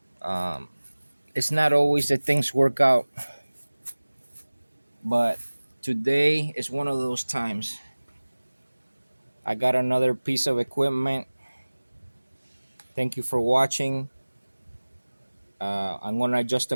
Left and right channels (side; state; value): both; inverted; correlation -1.00